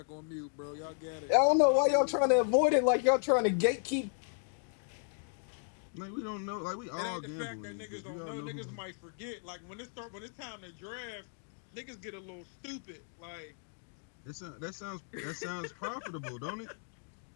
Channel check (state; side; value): silent; right; 55 dB below the other